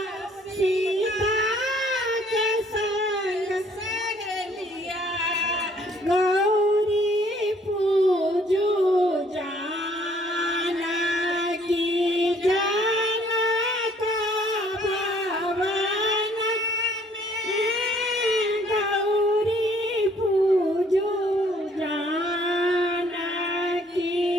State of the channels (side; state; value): both; normal; correlation 0.61